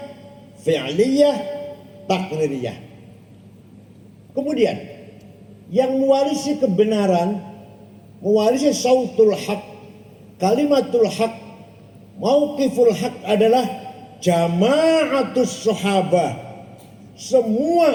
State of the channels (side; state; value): both; identical; correlation 1.00